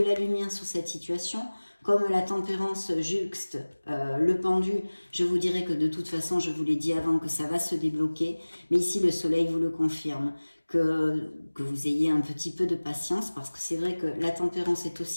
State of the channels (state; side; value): inverted; both; correlation -1.00